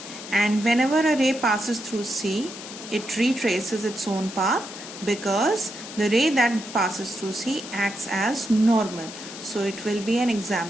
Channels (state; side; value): noise; left; hiss, 12 dB below the sound